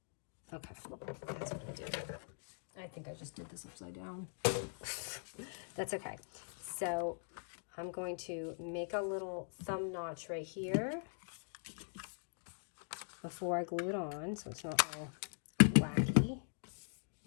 Okay, that's what I did. I think I just did this upside down. That's okay. So I'm going to make a little thumb notch right here before I glue it on, so it's not all wacky.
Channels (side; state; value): right; silent; digital silence